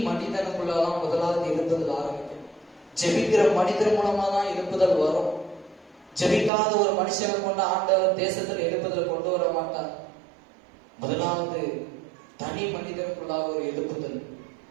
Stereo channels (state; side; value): drops out; left; at 6.5 s